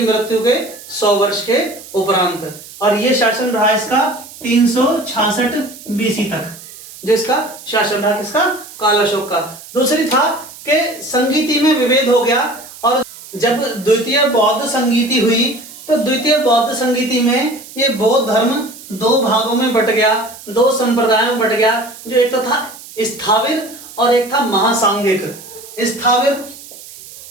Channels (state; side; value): noise; right; hiss, 17 dB below the sound